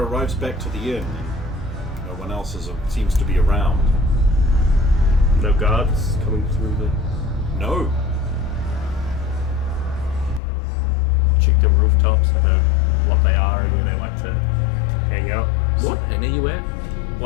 back to the inn, and no one else seems to be around. No guards coming through the... No. Check the rooftops, I know what they are and where they like to hang out. What? And are you at?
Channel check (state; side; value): drops out; right; at 10.4 s